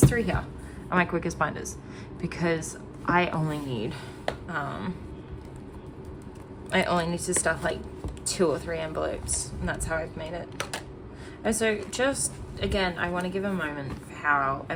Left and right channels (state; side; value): identical; both; correlation 1.00